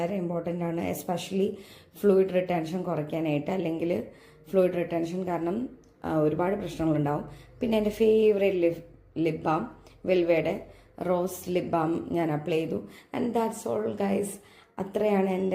ഇമ്പോർട്ടൻ്റ് ആണ്, എസ്പെഷ്യലി ഫ്ലൂയിഡ് റിട്ടൻഷൻ കുറയ്ക്കാനായിട്ട്. അല്ലെങ്കിൽ ഫ്ലൂയിഡ് റിട്ടൻഷൻ കാരണം ഒരുപാട് പ്രശ്നങ്ങളുണ്ടാവും. പിന്നെ എൻ്റെ ഫേവറേറ്റ് ലിപ് ബാം വെൽവയുടെ റോസ് ലിപ് ബാം ഞാൻ അപ്ലൈ ചെയ്തു. And that's all guys. അത്രയാണ്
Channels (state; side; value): identical; both; correlation 1.00